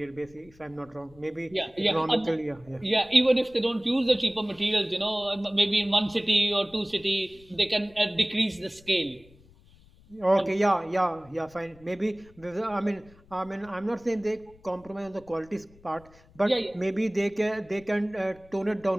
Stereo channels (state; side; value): noise; left; rumble, 26 dB below the sound